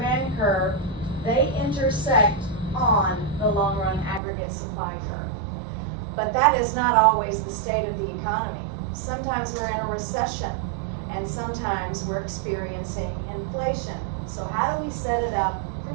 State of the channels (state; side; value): drops out; left; at 4.2 s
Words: curve, they intersect on the long-run aggregate supply curve. But that is not always the state of the economy. Sometimes we're in a recession, and sometimes we're experiencing inflation. So how do we set it up for